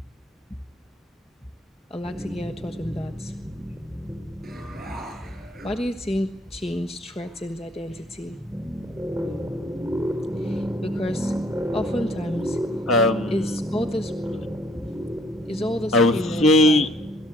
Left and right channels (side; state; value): both; normal; correlation 0.61